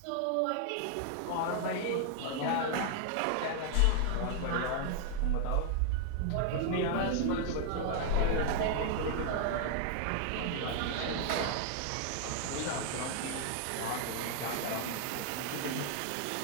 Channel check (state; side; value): different; both; correlation 0.00